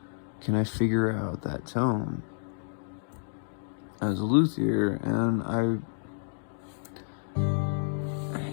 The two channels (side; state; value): right; silent; digital silence